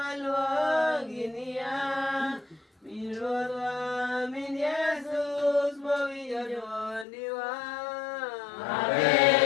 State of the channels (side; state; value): right; drops out; at 7.1 s